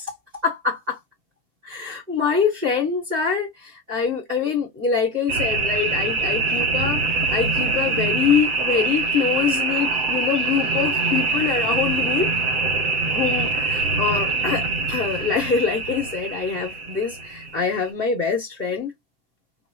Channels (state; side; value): late; left; 7.7 ms